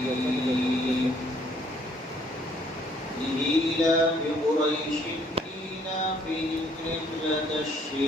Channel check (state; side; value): normal; both; correlation 0.64